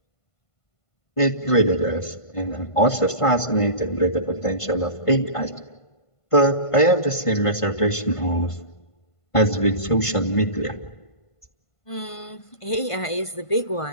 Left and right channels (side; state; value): right; late; 1.5 ms